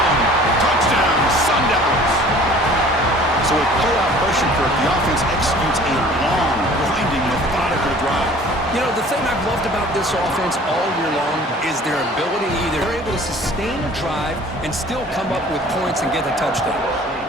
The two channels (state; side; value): normal; both; correlation 0.49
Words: Touchdown, Sun Devils. So with playoff pressure curve, the offense executes a long, grinding, methodical drive. You know, the thing I've loved about this offense all year long is their ability either they're able to sustain a drive and still come up with points and get a touchdown.